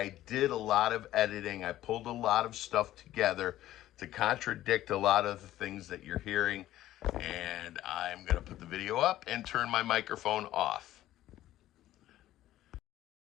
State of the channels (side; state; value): right; quieter; 14.1 dB